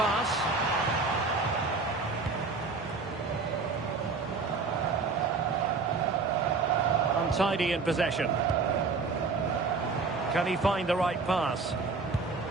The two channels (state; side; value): quieter; left; 4.3 dB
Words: Untidy in possession. Can he find the right pass?